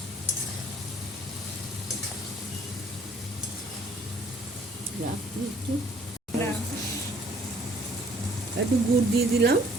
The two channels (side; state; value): both; normal; correlation 0.59